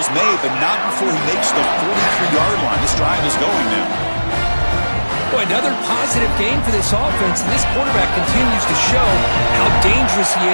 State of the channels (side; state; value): both; inverted; correlation -1.00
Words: made, but not before he makes the 43-yard line. This drive is going now. Boy, another positive game for this offense, and this quarterback continues to show how dangerous he